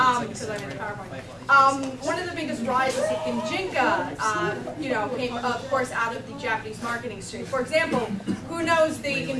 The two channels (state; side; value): identical; both; correlation 1.00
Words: because I'm in PowerPoint. One of the biggest rises of Gijinka, you know, came, of course, out of the Japanese marketing stream. For example, who knows the